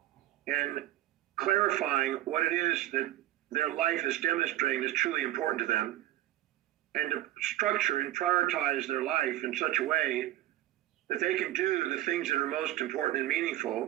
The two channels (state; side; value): quieter; left; 14.3 dB